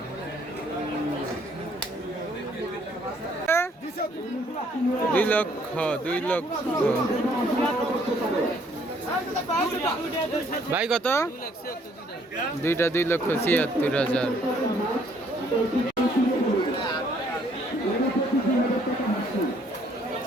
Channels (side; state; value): both; normal; correlation 0.64